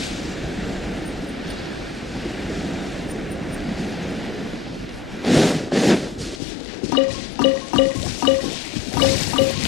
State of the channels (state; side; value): drops out; right; at 6.4 s